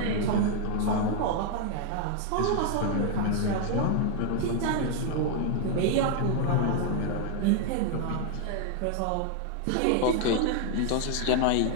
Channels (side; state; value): both; different; correlation 0.00